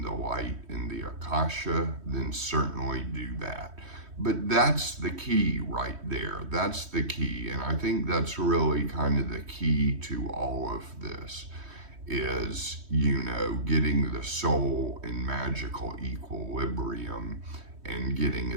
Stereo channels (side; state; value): left; late; 3.2 ms